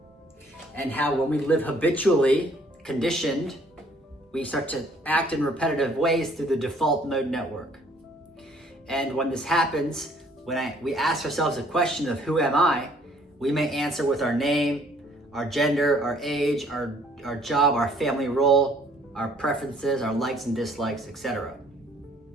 and how when we live habitually conditioned, we start to act in repetitive ways through the default mode network. And when this happens, when we ask ourselves a question of who am I, we may answer with our name, our gender, our age, our job, our family role, our preferences, our likes and dislikes, etc.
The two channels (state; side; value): normal; both; correlation 0.61